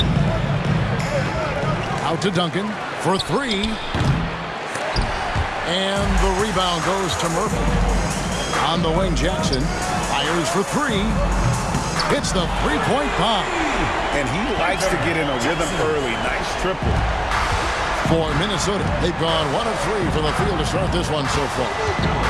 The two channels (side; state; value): both; identical; correlation 1.00